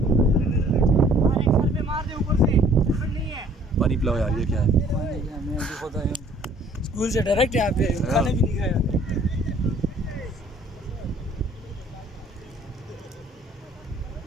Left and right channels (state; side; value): normal; both; correlation 0.57